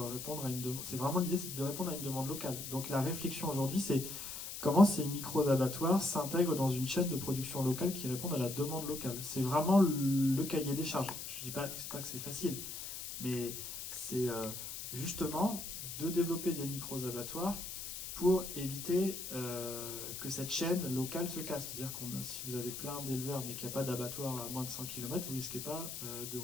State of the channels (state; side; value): noise; left; hiss, 7 dB below the sound